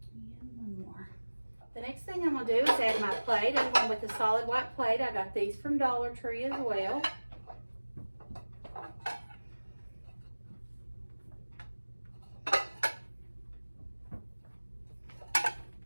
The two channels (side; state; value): both; inverted; correlation -1.00